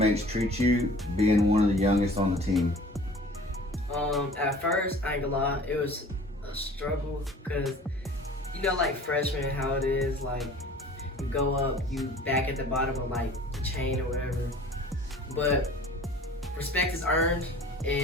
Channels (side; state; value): both; normal; correlation 0.47